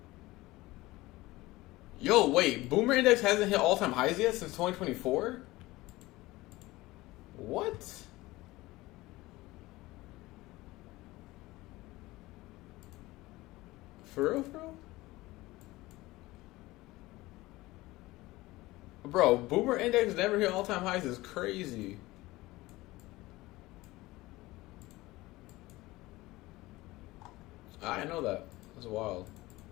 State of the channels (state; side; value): quieter; right; 19.4 dB